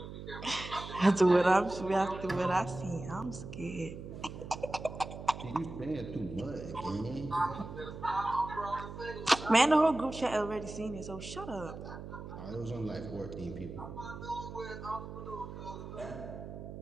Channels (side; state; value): right; noise; hum, 10 dB below the sound